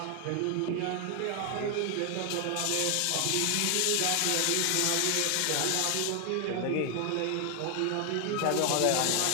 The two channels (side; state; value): both; different; correlation 0.00